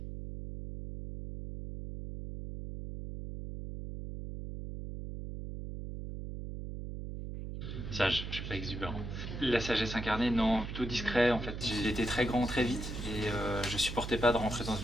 Sage, je suis pas exubérant. La sagesse incarnée, non, plutôt discret en fait. J'ai été très grand très vite et je supportais pas de rentrer dans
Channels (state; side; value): noise; right; hum, 7 dB below the sound